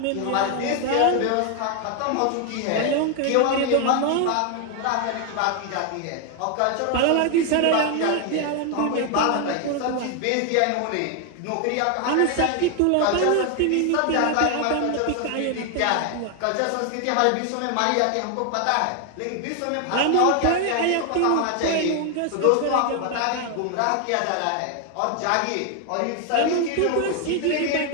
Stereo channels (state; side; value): different; both; correlation 0.00